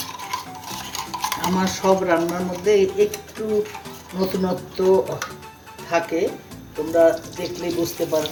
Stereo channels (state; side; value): identical; both; correlation 1.00